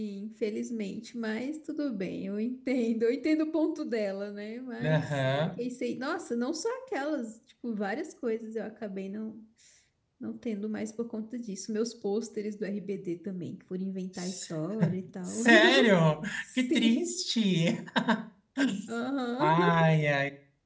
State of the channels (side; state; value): both; identical; correlation 1.00